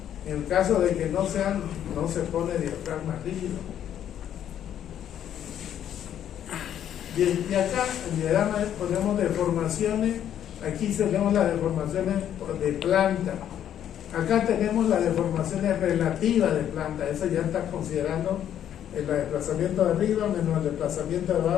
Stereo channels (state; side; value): quieter; right; 10.2 dB